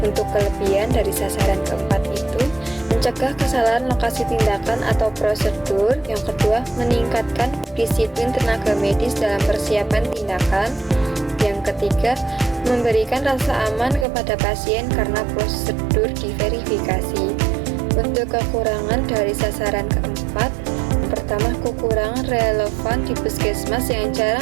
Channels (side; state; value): left; drops out; at 14.1 s